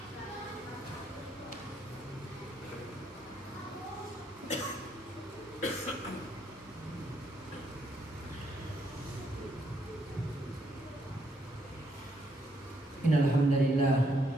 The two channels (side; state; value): both; normal; correlation 0.74